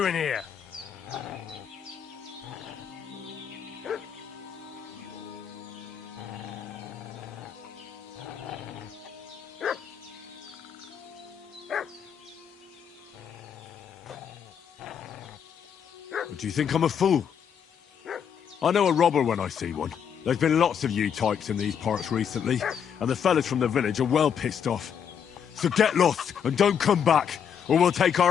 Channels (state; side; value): quieter; right; 7.9 dB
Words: here? Do you think I'm a fool? I know a robber when I see one. There's been lots of you types in these parts recently, and the fellas from the village are well pissed off. So get lost and don't come back, or we'll take